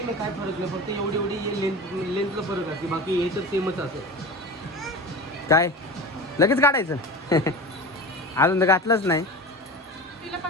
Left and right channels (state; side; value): normal; both; correlation 0.31